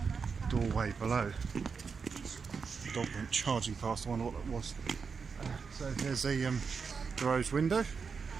doorway below. The dog went charging past. I wonder what that was. So there's the rose window,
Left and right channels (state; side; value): quieter; left; 5.5 dB